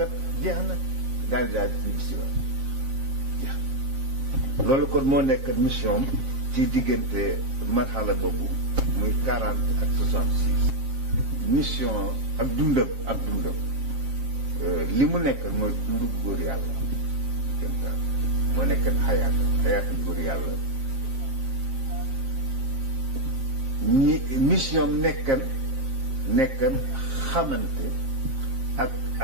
jeex na daal di ñu si waat jeex na loolu kon moo nekk mission ci diggante marxala boobu muy 40 ak 66 mission ak dundam li mu nekk mooy dundu góor yàlla moo nekk xayaatu góor yàlla mission nekkan xamante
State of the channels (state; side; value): late; left; 7.5 ms